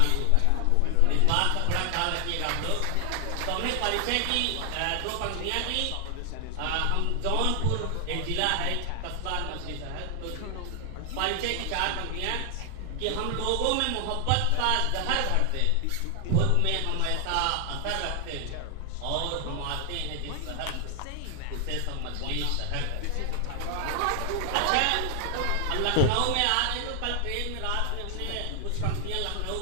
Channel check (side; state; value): both; different; correlation 0.00